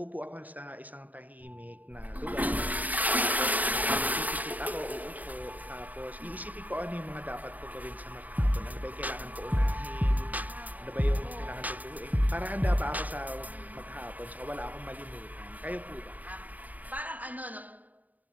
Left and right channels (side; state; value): left; late; 0.078 ms